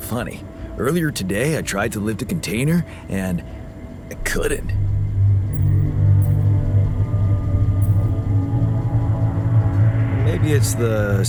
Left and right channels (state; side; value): identical; both; correlation 1.00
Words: earlier today I tried to lift a container and I couldn't. Maybe it's the